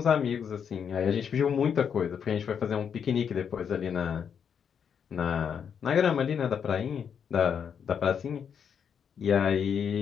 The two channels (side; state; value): right; quieter; 7.5 dB